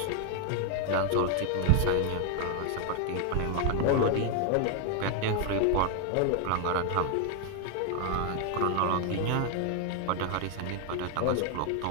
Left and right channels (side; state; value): both; different; correlation 0.00